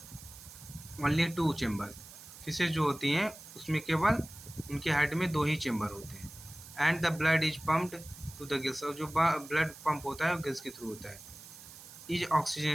2 chamber. Fishes जो होती हैं उसमें केवल उनके हेड में 2 ही चैम्बर होते हैं। And the blood is pumped to the gills. और जो ब्लड पंप होता है वो गिल्स के थ्रू होता है। इज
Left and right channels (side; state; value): right; noise; hiss, 17 dB below the sound